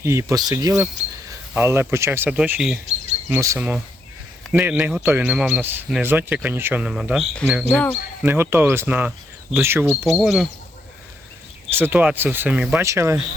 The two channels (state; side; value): normal; both; correlation 0.76